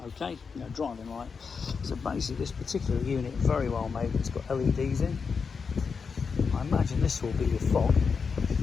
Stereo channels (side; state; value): right; quieter; 5.5 dB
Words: Okay, driving light. So basically this particular unit, very well made, it's got LEDs in. I imagine this will be your fog,